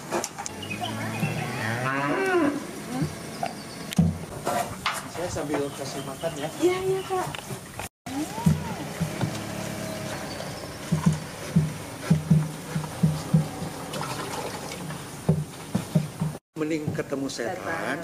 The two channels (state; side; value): identical; both; correlation 1.00